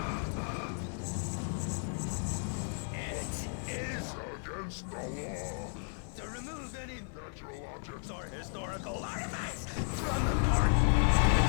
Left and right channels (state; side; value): silent; right; 55 dB below the other